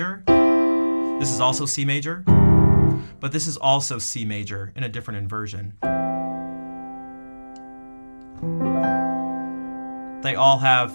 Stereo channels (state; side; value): inverted; both; correlation -1.00